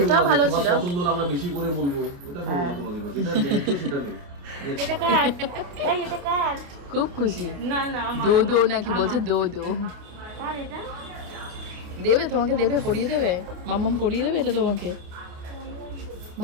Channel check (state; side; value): late; left; 28 ms